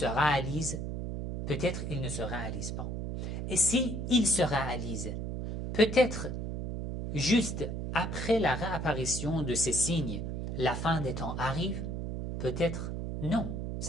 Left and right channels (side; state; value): right; noise; hum, 4 dB below the sound